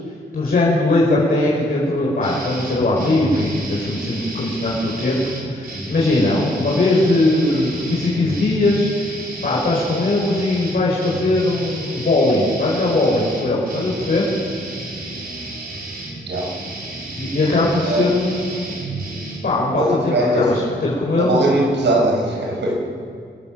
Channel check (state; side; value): normal; both; correlation 0.62